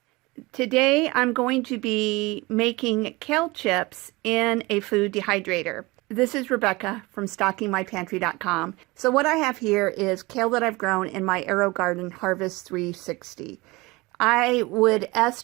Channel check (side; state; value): left; quieter; 22.9 dB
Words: Today I'm going to be making kale chips in a food dehydrator. This is Rebecca from StockingMyPantry.com. So what I have here is kale that I've grown in my AeroGarden Harvest 360. I would